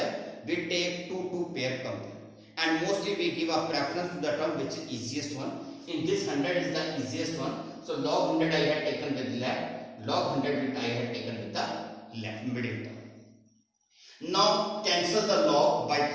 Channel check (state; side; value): identical; both; correlation 1.00